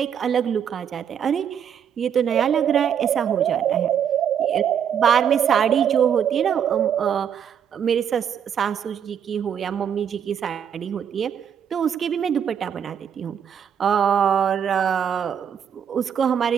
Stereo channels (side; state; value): left; quieter; 8.3 dB